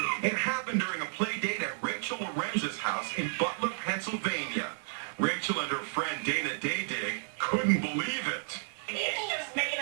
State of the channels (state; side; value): silent; left; digital silence